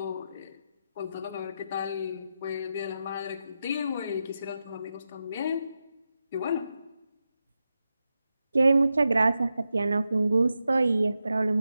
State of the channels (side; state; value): both; inverted; correlation -0.89